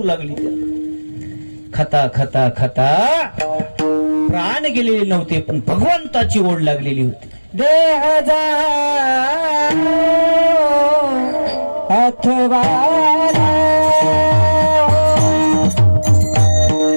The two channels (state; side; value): inverted; both; correlation -1.00